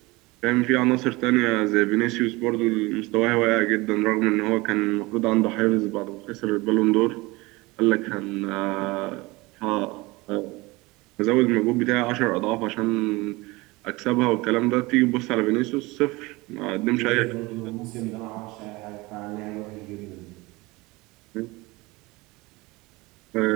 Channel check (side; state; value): left; quieter; 22.7 dB